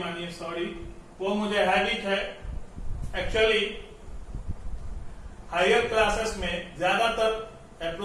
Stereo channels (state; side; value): identical; both; correlation 1.00